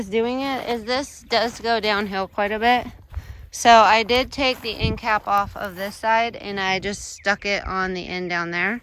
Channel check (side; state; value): both; identical; correlation 1.00